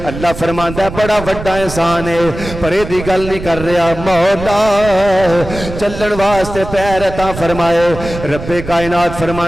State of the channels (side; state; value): right; noise; rumble, 10 dB below the sound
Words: اللہ فرماندا ہے بڑا بڑا احسان ہے، پر یہ دی گل نہیں کر رہا مولا، چلن واسطے پیر عطا فرمائے۔ رب کائنات